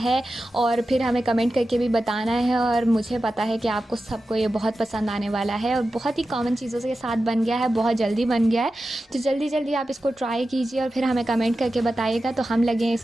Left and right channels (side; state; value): both; normal; correlation 0.93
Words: और फिर हमें कमेंट करके भी बताना है। और मुझे पता है कि आपको सबको ये बहुत पसंद आने वाला है और बहुत ही कॉमन चीज़ों के साथ बन गया है, बहुत जल्दी बन गया है। तो जल्दी जल्दी आप इसको ट्राई कीजिए और फिर हमें कमेंट करके बताइएगा, तो हम लगे